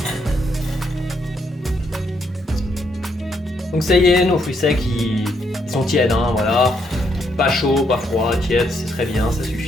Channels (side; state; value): both; normal; correlation 0.75